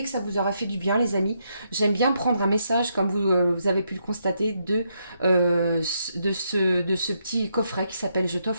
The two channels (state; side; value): inverted; both; correlation -0.79